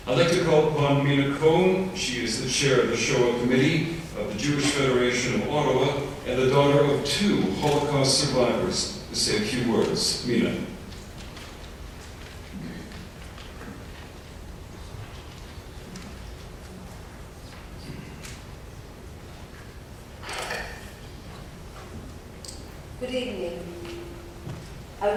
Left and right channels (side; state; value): both; identical; correlation 1.00